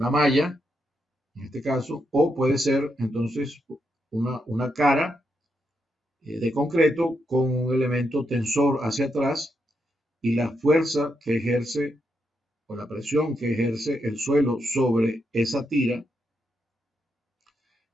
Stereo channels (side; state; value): both; normal; correlation 0.82